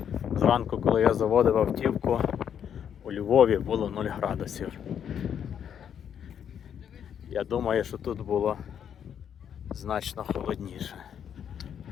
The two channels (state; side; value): quieter; right; 8.6 dB